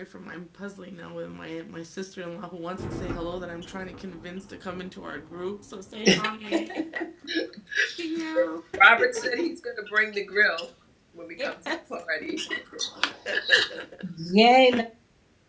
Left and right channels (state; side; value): identical; both; correlation 1.00